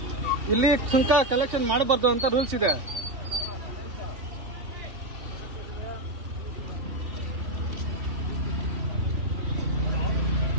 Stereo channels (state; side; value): late; left; 2.9 ms